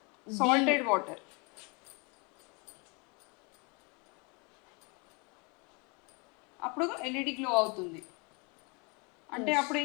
సాల్టెడ్ వాటర్. అప్పుడు ఎల్ఈడి గ్లో అవుతుంది. అంటే అప్పుడు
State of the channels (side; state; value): right; quieter; 31.6 dB